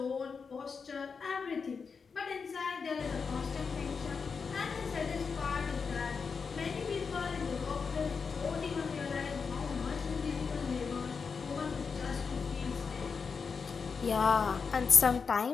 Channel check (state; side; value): quieter; right; 5.5 dB